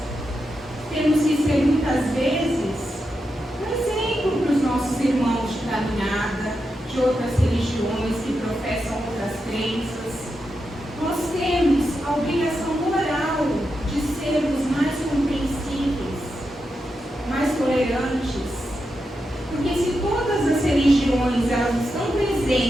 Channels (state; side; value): normal; both; correlation 0.87